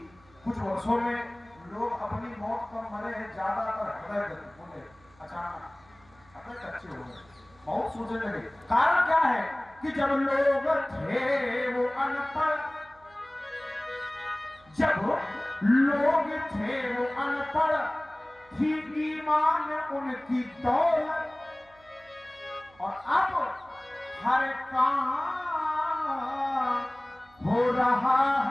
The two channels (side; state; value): right; noise; hum, 28 dB below the sound